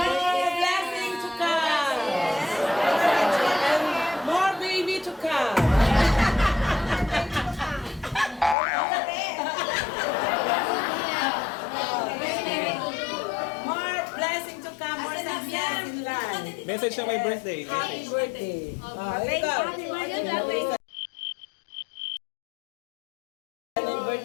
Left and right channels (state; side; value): drops out; right; at 8.6 s